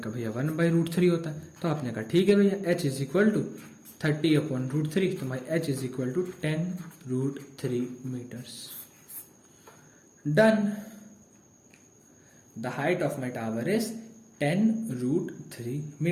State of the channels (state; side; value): identical; both; correlation 1.00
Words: भैया 1/√3 होता है। तो आपने कहा ठीक है भैया, h is equal to 30 upon √3, तो my h is equal to 10√3 metres. Done. The height of my tower is 10√3